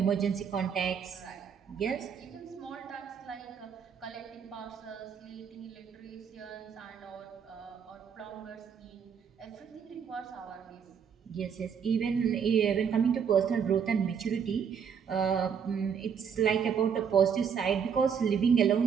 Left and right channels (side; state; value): left; quieter; 7.1 dB